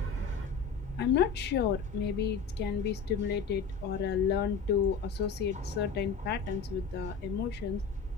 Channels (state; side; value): quieter; right; 5.7 dB